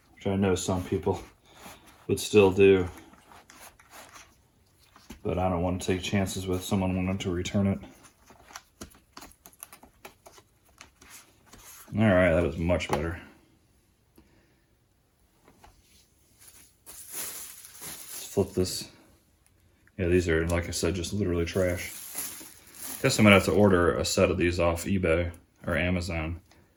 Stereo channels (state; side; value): identical; both; correlation 1.00